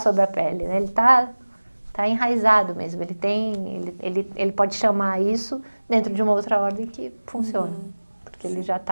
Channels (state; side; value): inverted; both; correlation -1.00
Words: a pele, né? Ele tá enraizado mesmo, ele pode chamar isso dentro de uma outra ordem que funciona, porque ele já